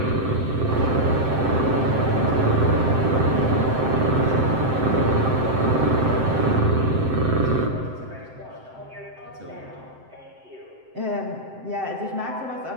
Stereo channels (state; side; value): late; left; 7.7 ms